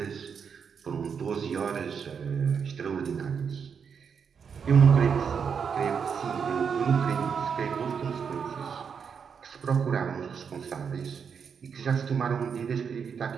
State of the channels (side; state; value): left; quieter; 6.6 dB